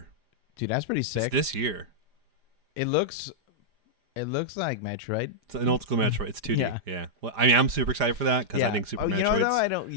Dude, that's pretty It's sick. this year. It looks like Metroid. It's an old school Metroid. It's 2D. Yeah. Well, I mean, I'm super excited for that because I think Super you Metroid's... know though,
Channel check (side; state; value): left; late; 4.9 ms